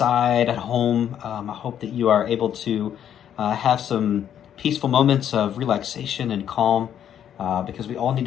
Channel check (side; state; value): right; quieter; 9.7 dB